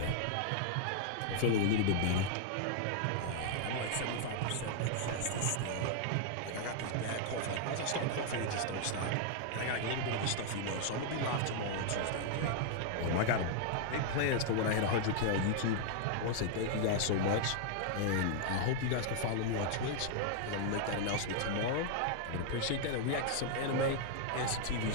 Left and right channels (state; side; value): different; both; correlation -0.01